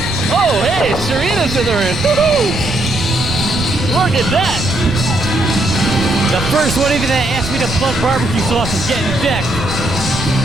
oh, hey, Serena's in the ring. Woo-hoo! Look at that. The first one even that asked me to plug barbecue sauce is getting decked.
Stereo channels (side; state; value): right; noise; rumble, 8 dB below the sound